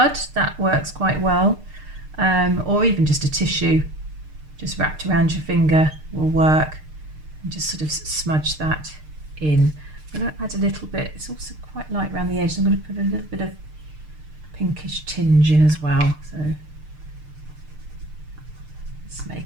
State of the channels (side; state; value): left; late; 6.6 ms